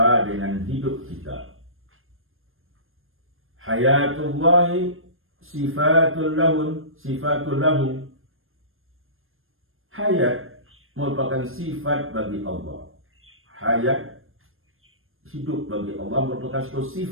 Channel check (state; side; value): late; left; 0.60 ms